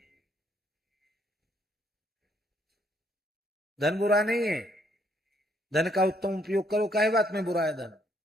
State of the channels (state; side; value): normal; both; correlation 0.70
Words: धन बुरा नहीं है, धन का उत्तम उपयोग करो। काहे बात में बुरा है धन?